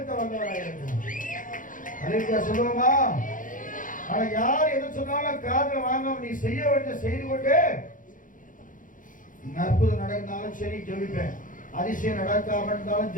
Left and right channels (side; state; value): right; late; 0.38 ms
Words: வந்தவனாய் இருக்கிறான். அலையா சொல்லுவோமா? ஆனா யார் எது சொன்னாலும் காதுல வாங்காம நீ செய்ய வேண்டிய செய்து கொண்டு, அற்புதம் நடந்தாலும் சரி ஜெபிப்பேன், அதிசயம் நடக்காம இருந்தாலும்